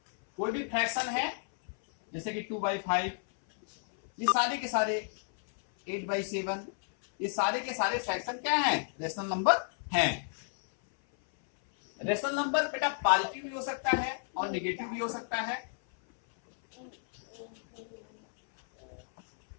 कोई भी फ्रैक्शन है जैसे कि 2/5, ये सारे के सारे 8/7, ये सारे के सारे फ्रैक्शन क्या हैं? रेशनल नंबर हैं। रेशनल नंबर बेटा पॉजिटिव भी हो सकता है और नेगेटिव भी हो सकता है।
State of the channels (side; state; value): right; silent; 57 dB below the other